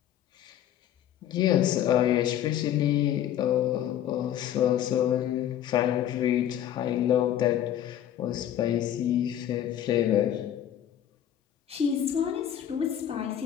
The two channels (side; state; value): right; quieter; 10.9 dB